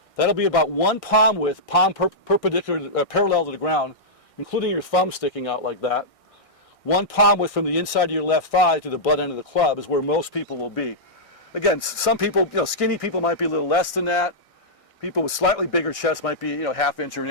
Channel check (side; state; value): right; late; 1.6 ms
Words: that'll be about 1 palm width, perpendicular, parallel to the ground, including your thumb sticking out like that. 1 palm width from the inside of your left thigh to the butt end of the club is where most people will be. Again, some people, skinny people might be a little less than that. People with slightly bigger chests might be, ½ inch or an